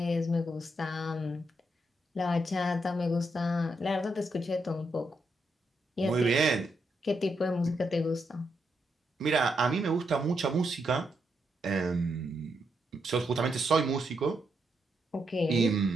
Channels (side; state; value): both; normal; correlation 0.80